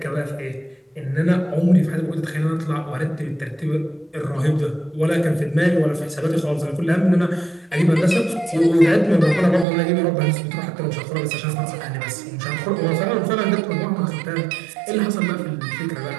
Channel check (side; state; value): left; drops out; at 9.7 s